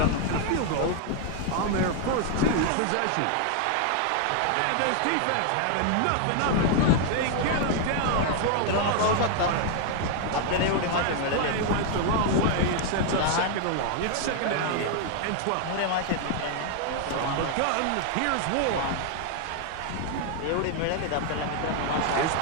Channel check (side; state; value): both; different; correlation 0.00